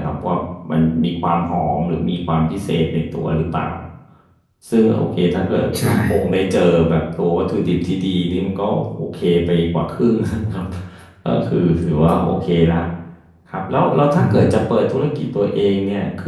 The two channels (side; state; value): both; identical; correlation 1.00